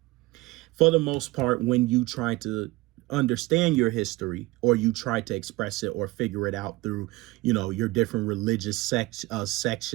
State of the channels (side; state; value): left; quieter; 20.7 dB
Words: For the most part, when you try to understand your history, or you try to express it or figure it out through, your different religious sectors